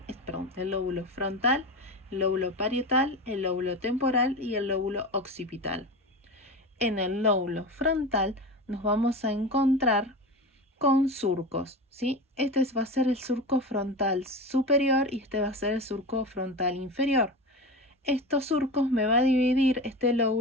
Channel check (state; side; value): normal; both; correlation 0.26